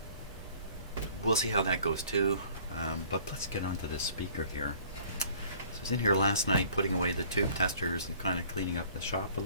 we'll see how that goes too. But let's get onto this speaker here. So I was in here last night putting away the tube testers and kind of cleaning up the shop a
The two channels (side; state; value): both; inverted; correlation -0.52